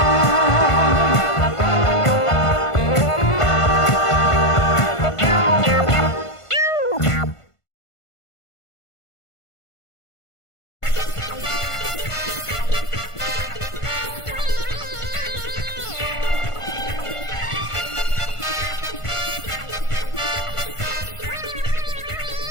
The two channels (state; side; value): late; right; 1.5 ms